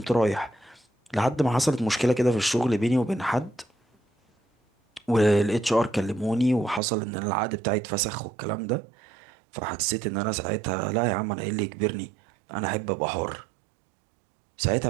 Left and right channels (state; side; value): drops out; left; at 6.8 s